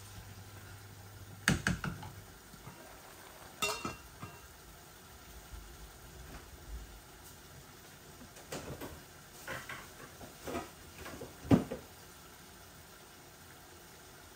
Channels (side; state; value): both; identical; correlation 1.00